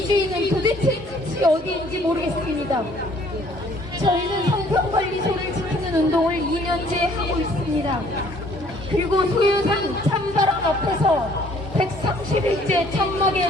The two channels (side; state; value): both; normal; correlation 0.59